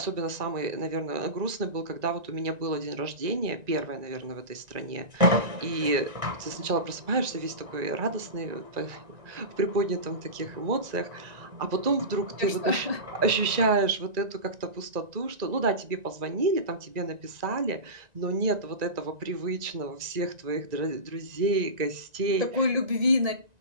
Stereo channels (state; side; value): late; left; 1.9 ms